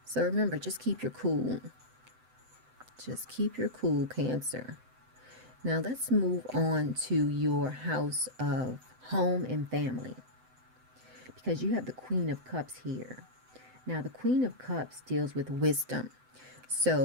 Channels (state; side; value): late; left; 7.8 ms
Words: So remember, just keep your cool. Just keep your cool, Cancer. Now let's move on to your house of home and family, because you have the Queen of Cups here. Now the Queen of Cups deals with wisdom.